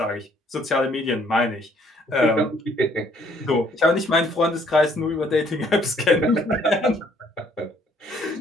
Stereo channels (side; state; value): both; normal; correlation 0.63